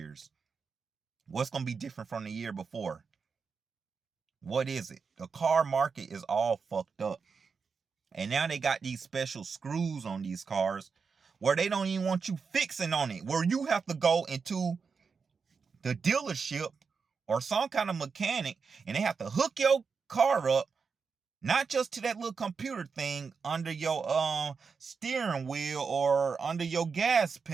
What's gonna be different from the year before? What is it? The car market is all fucked up. And now they got these special screws on these cars where they don't even want you fixing on it, where you have to go into the dealership or some kind of mechanic and they have to hook your car up, not just to that little computer thing under your steering wheel or under your gas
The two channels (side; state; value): left; quieter; 5.4 dB